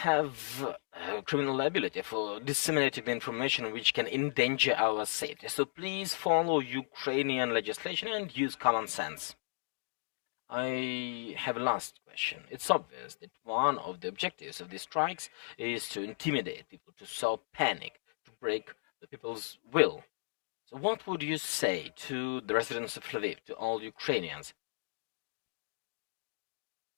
have criminal liability for disseminating the information which can endanger our safety. So please follow Ukrainian legislation and use common sense. I have a last question. It's obvious that one of the objectives of these strikes is to intimidate people, to sow panic, to break the people's will. So what would you say to the residents of Lviv, to all Ukrainians?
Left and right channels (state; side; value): silent; right; digital silence